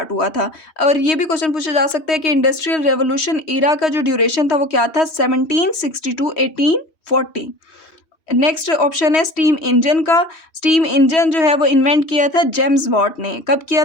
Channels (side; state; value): right; late; 3.1 ms